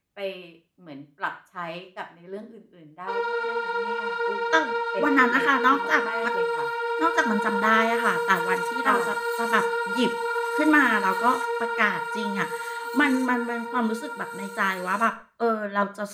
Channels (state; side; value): identical; both; correlation 1.00